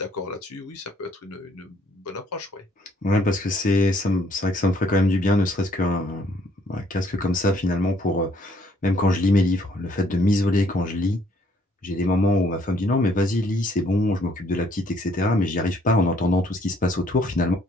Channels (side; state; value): both; normal; correlation 0.65